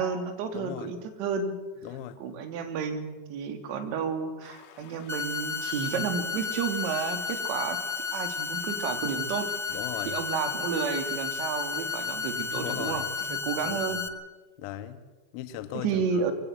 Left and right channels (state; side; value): late; left; 5.3 ms